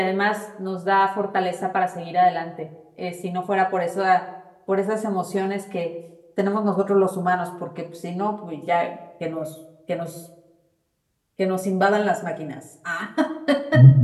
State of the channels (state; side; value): identical; both; correlation 1.00